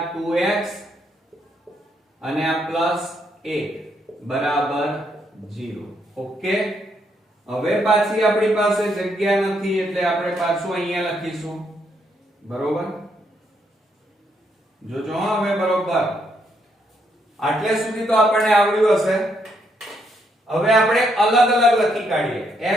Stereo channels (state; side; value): normal; both; correlation 0.75